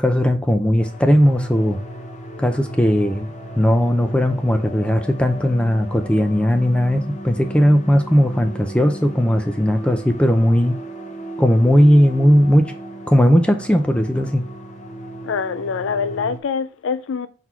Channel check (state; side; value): normal; both; correlation 0.92